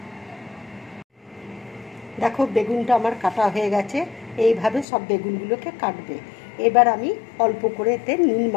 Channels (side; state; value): right; drops out; at 4.9 s